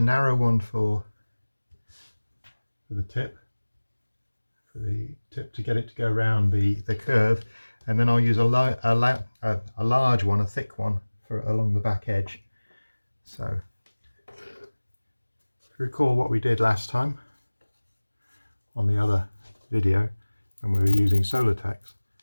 one for the tip, to get it to go around the curve, and then I'll use a large one, a thick one, for along the back edge. So if you recall what we did last time on the other video when we were using Diatex,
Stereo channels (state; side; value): inverted; both; correlation -1.00